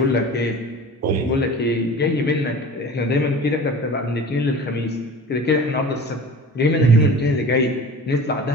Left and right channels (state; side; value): normal; both; correlation 0.39